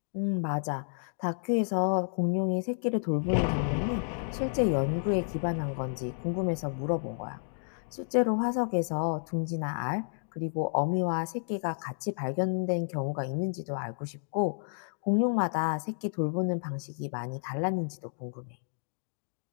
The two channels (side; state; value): right; silent; digital silence